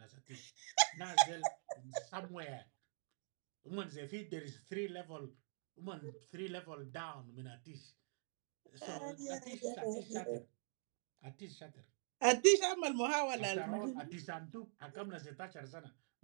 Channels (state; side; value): silent; left; digital silence